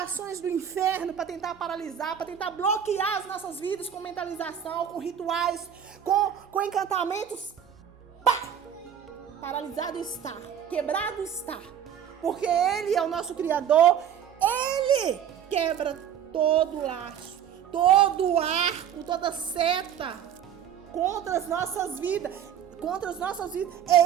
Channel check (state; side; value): quieter; left; 9.2 dB